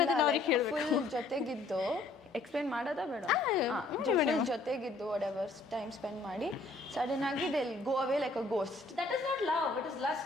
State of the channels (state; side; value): quieter; right; 3.2 dB